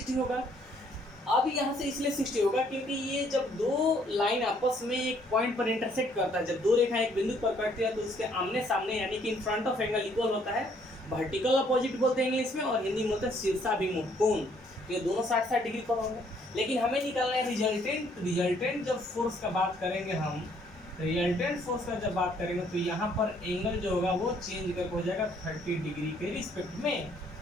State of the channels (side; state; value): both; normal; correlation 0.65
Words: होगा। अब यहाँ से इसलिए 60 होगा क्योंकि ये जब दो लाइन आपस में एक पॉइंट पर इंटरसेक्ट करता है, जब दो रेखाएं एक बिंदु पर कटती है तो उसके आमने सामने यानी कि in front of angle equal होता है। वर्टिकल अपोजिट बोलते हैं इंग्लिश में और हिंदी में बोलते हैं शीर्षाभिमुख कोण। ये दोनों 60-60 डिग्री पर होंगे। लेकिन हमें निकालना है रिजल्टेंट जब फोर्स का बात करेंगे हम, रिजल्टेंट फोर्स का जब बात करेंगे तो यहाँ पर एंगल जो होगा वो चेंज करके हो जाएगा 30 डिग्री के रिस्पेक्ट में।